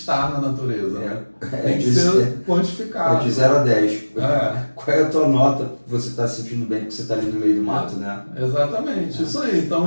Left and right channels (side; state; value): both; inverted; correlation -1.00